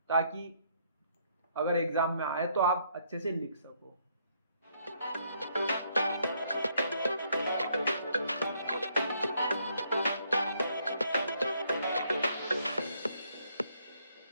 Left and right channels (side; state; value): both; inverted; correlation -0.70